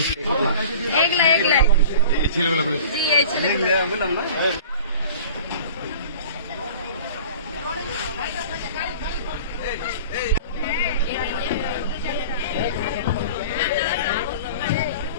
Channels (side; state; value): both; inverted; correlation -0.42